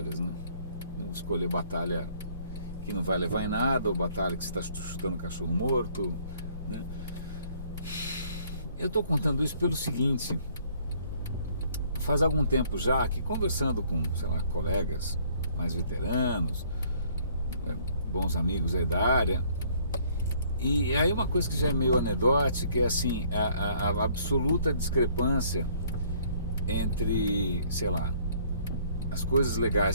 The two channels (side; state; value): both; inverted; correlation -0.61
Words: né? Escolher batalha que não vai levar em nada, ou batalha que você está chutando cachorro morto, né? Eu estou contando isso pelo seguinte: faz algum tempo já que, conversando com, sei lá, colegas mais veteranos, bons amigos aí da área, e aí uma coisa que já é meio anedótica é assim, a absoluta discrepância entre, sei lá, as coisas